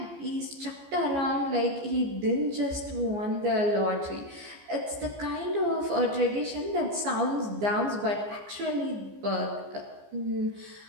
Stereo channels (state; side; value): late; left; 15 ms